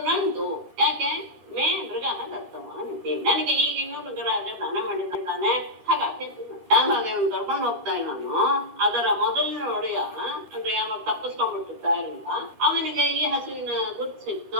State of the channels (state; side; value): late; left; 14 ms